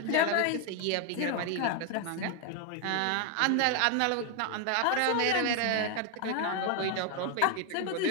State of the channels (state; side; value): different; both; correlation 0.00